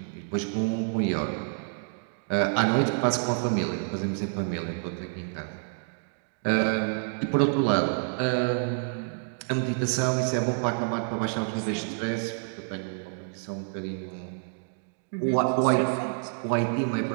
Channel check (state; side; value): silent; left; digital silence